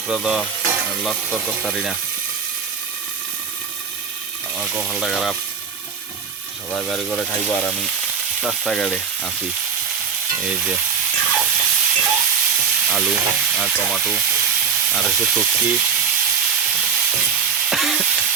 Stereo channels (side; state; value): left; quieter; 6.8 dB